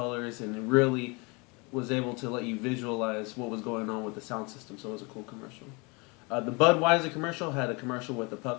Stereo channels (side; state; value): right; quieter; 29.0 dB